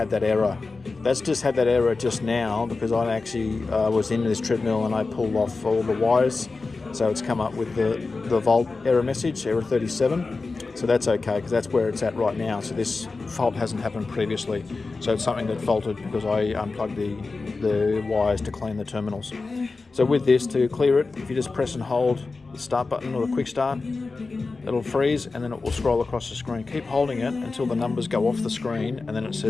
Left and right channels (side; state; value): right; quieter; 3.9 dB